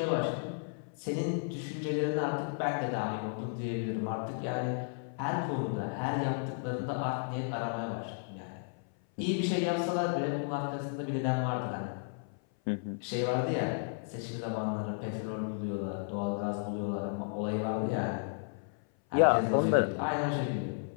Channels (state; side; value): silent; right; 55 dB below the other